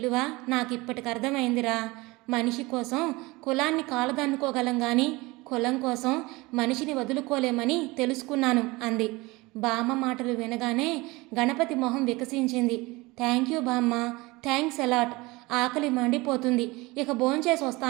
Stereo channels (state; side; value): quieter; left; 22.6 dB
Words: నాకిప్పటికి అర్థమైందిరా. మనిషి కోసం కులాన్ని కాలదన్నుకోగలం కానీ కులం కోసం మనిషిని వదులుకోలేమని తెలుసుకున్నాను అంది. బామ్మ మాటలు వినగానే గణపతి మొహం వికసించింది. థ్యాంక్ యూ బామ్మ, థ్యాంక్స్ అలాట్. ఆకలి మండిపోతుంది, ఇక భోంచేసి